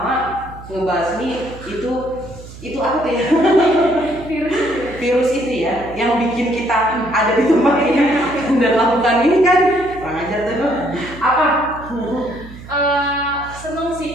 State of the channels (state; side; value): noise; right; hum, 16 dB below the sound